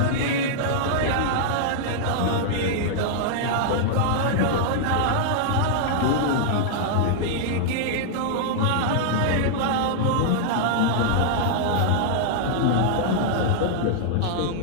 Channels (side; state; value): both; different; correlation -0.01